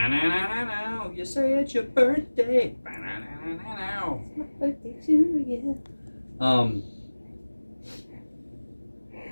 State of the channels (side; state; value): both; inverted; correlation -1.00